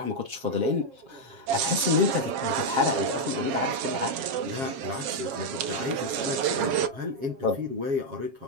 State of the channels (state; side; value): late; left; 7.4 ms